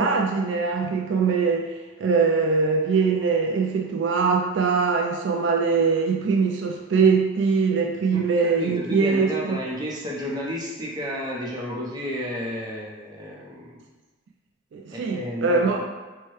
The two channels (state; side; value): quieter; left; 4.2 dB